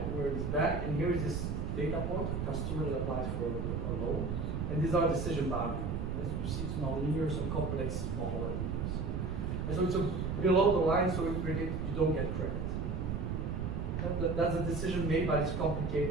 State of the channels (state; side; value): noise; right; rumble, 1 dB below the sound